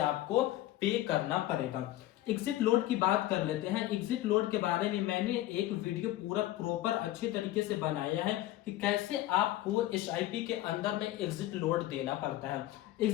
आपको पे करना पड़ेगा। एग्जिट लोड की बात कर लेते हैं। एग्जिट लोड के बारे में मैंने एक वीडियो पूरा प्रॉपर अच्छे तरीके से बनाया है कि कैसे आपको एसआईपी के अंदर में एग्जिट लोड देना पड़ता है।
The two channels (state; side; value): quieter; right; 15.0 dB